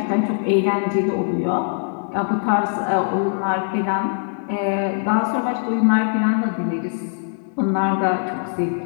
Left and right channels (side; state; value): right; silent; digital silence